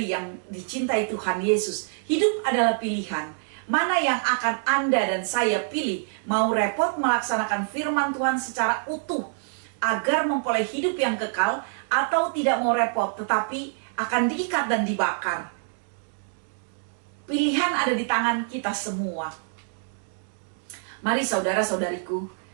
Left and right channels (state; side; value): silent; left; digital silence